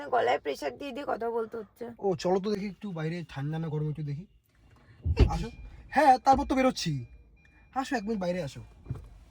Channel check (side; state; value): both; identical; correlation 1.00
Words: গলায় প্রেসার দিয়ে দিয়ে কথা বলতে হচ্ছে। ও চলো তো দেখি একটু বাইরে ঠান্ডা না গরম একটু দেখি। আসো। হ্যাঁ, তারপর তো বেরোচ্ছি। আসো, 1 মিনিট বাইরে আসো,